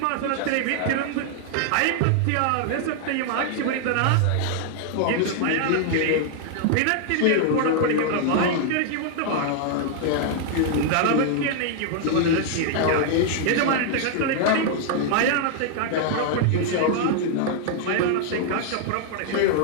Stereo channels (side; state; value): both; different; correlation 0.00